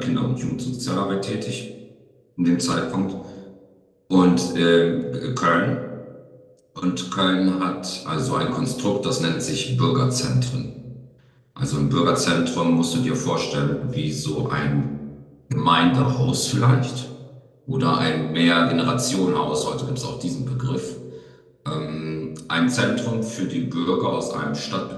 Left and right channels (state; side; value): identical; both; correlation 1.00